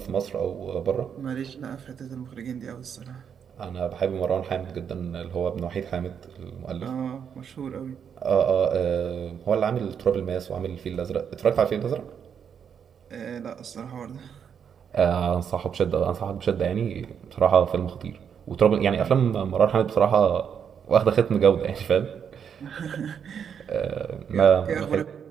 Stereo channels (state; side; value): quieter; left; 7.6 dB